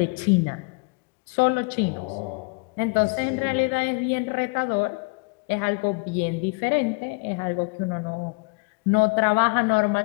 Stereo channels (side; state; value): right; quieter; 31.1 dB